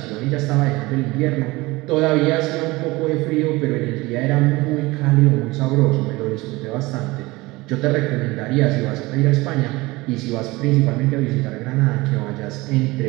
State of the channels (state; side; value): quieter; left; 21.5 dB